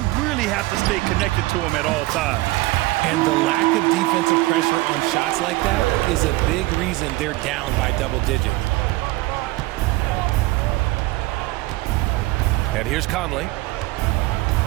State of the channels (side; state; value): left; quieter; 19.9 dB